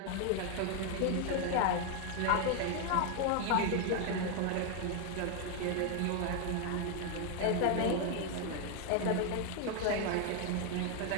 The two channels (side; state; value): both; different; correlation 0.01